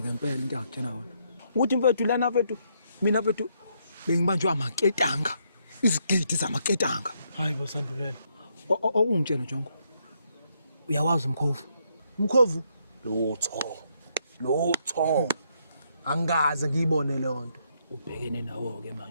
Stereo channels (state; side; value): inverted; both; correlation -0.75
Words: into engakutshena wona. Ukuthi mfethu lana mfethu mina mfethu bengibanjwa amaketanga. Izigidi zamaketanga. Hayibo Sandulela. Ungitshela Jongo. Uyawazi umkhovu? Umkhovu? Lutho. Angaze ngiyibone le nto. Ubhekene nawo ke